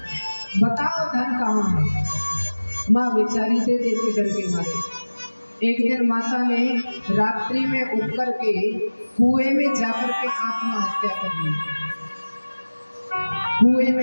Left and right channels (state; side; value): inverted; both; correlation -1.00